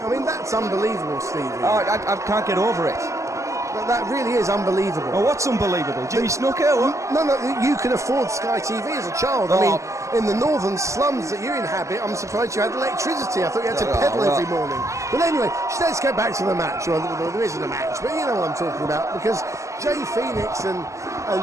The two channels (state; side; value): late; left; 0.15 ms